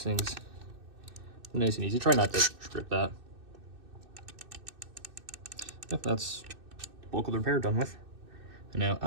things nice and easy. Try not to strip that. Yep, that's bulk of the repair done with. And now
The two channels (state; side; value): late; left; 2.6 ms